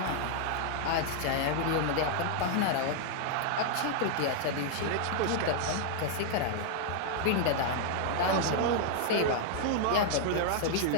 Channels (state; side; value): different; both; correlation -0.01